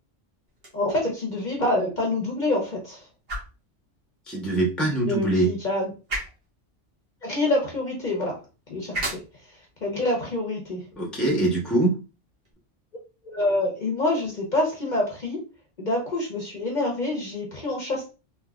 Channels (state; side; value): normal; both; correlation 0.27